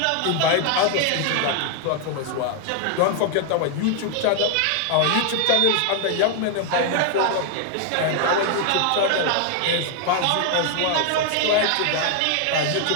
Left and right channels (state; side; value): different; both; correlation 0.00